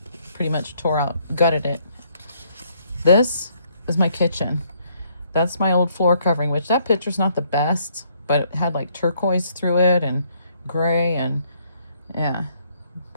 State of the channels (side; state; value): both; inverted; correlation -0.68